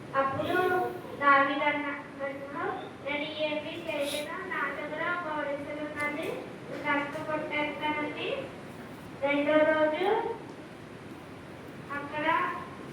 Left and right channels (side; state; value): both; identical; correlation 1.00